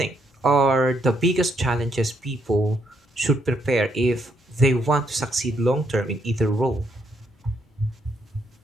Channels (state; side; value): normal; both; correlation 0.74